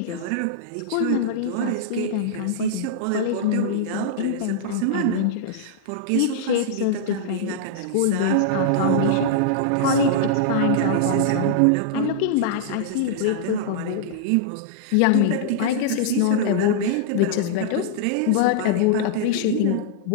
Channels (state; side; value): different; both; correlation -0.02